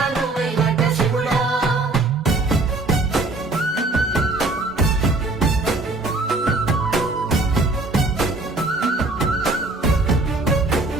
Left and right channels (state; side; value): quieter; left; 3.2 dB